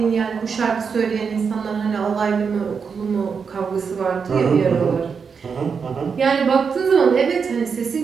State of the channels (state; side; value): quieter; left; 5.9 dB